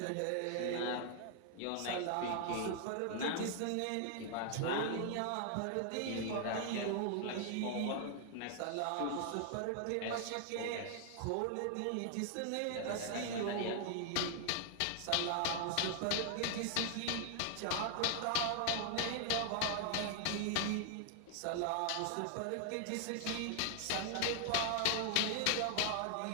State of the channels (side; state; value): both; different; correlation 0.00